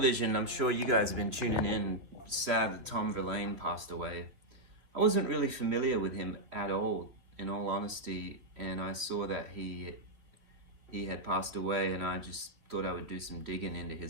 I'm sure you guys have been tuning in. Sad that Tom Verlaine passed away. I wasn't really familiar with him at all, in all honesty, and I saw that he had passed away, and I just thought I would do some digging into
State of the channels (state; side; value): late; left; 3.2 ms